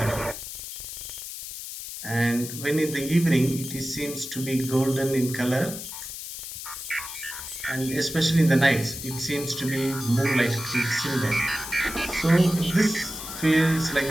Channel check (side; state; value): left; noise; hiss, 9 dB below the sound